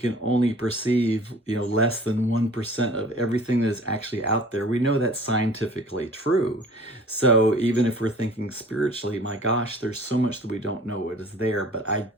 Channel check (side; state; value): both; normal; correlation 0.47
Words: only perceive, less than 1% of everything that is actually out there. We know that's scientifically true. So even if we're thinking spiritually, my gosh, there's so much that we don't know what is there. But I